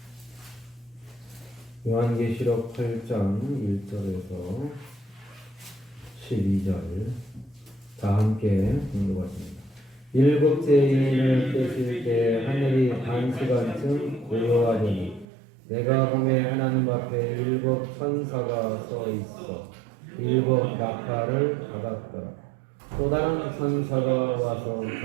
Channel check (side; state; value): left; drops out; at 15.2 s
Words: 요한계시록 8장 1절에서 12절 다 함께 공독하십니다. 일곱째 인을 떼실 때 하늘이 반시간쯤 고요하더니 내가 보매 하나님 앞에 일곱 천사가 서 있어 일곱 나팔을 받았더라. 또 다른 천사가 와서